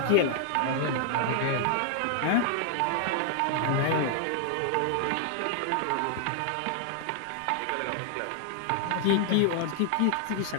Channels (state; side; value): different; both; correlation 0.00